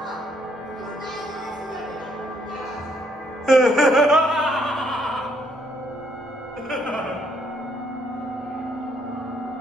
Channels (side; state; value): both; normal; correlation 0.70